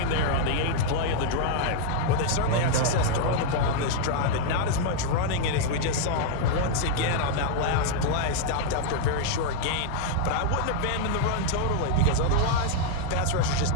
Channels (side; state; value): both; different; correlation 0.00